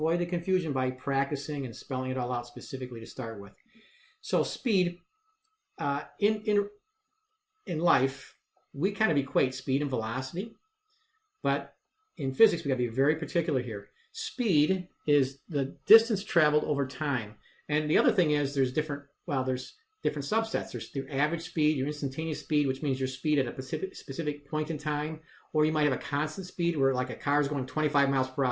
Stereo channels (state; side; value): identical; both; correlation 1.00